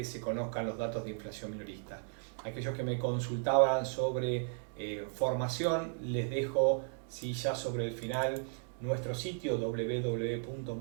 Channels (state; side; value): silent; left; 54 dB below the other